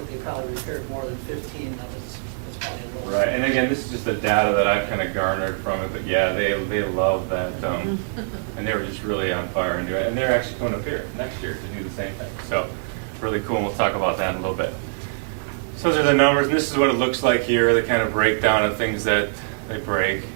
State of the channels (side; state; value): left; silent; digital silence